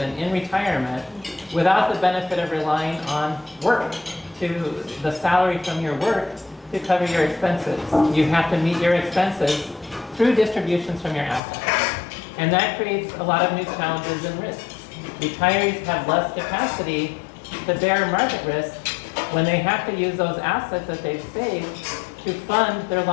in retirement without the benefit of relying on work, to the salary from your work to cover your expenses. You have to meet your expenses through distributions from your assets. And that creates a lot of new challenges and risks. Retirees have less capacity to bear market risk when they have to use those assets that they've saved to fund their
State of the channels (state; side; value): drops out; right; at 11.4 s